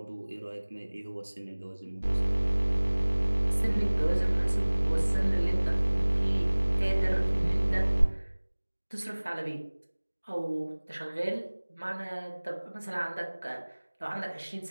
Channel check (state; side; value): inverted; both; correlation -1.00